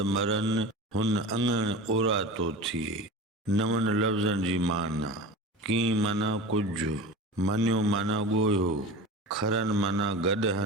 मरन हुन अङण ओरा तो थिए। नवन लफ़्ज़नि जी माना। की माना कुछ, मनियो माना ॻोयो, खरन माना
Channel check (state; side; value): normal; both; correlation 0.32